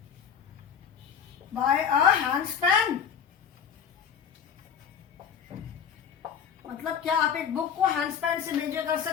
by a handspan? मतलब क्या आप एक बुक को हैंडस्पैन से मेजर कर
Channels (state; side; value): quieter; right; 7.5 dB